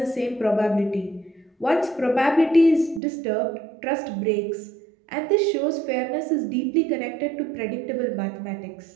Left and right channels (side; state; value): left; drops out; at 3.0 s